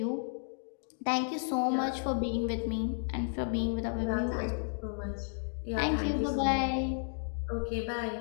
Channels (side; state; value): right; silent; digital silence